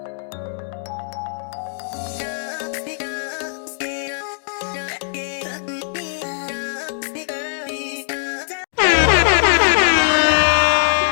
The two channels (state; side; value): silent; right; digital silence